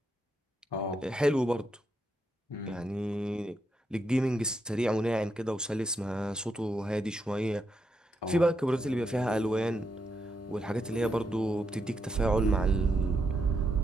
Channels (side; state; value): both; normal; correlation 0.81